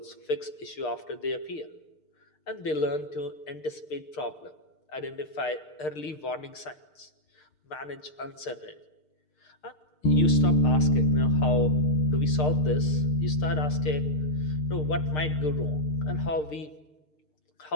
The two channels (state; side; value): late; right; 6.6 ms